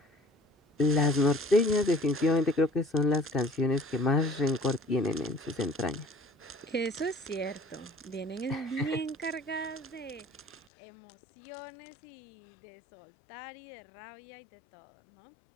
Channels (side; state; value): right; drops out; at 10.7 s